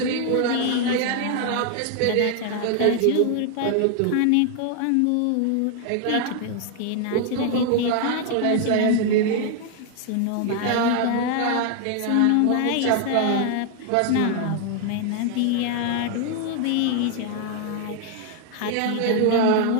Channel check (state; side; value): different; both; correlation 0.00